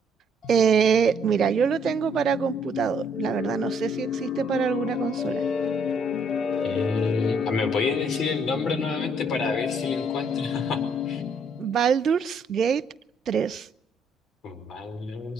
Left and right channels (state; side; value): normal; both; correlation 0.67